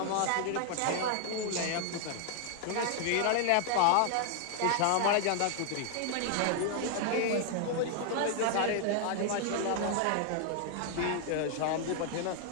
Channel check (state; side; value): different; both; correlation 0.00